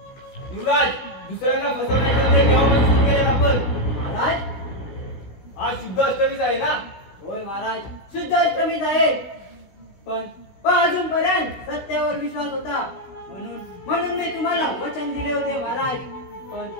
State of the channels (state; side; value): late; right; 16 ms